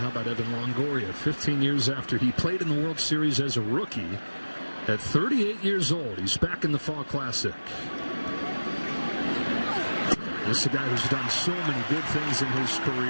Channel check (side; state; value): both; inverted; correlation -1.00